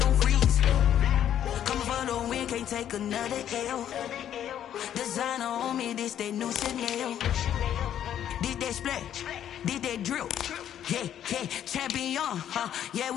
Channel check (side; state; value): right; quieter; 10.4 dB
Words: on freeze. Coming for the win, can't take another L. Designer on me, this that new Chanel. This that splash, this that drip. Yeah, champion, yeah,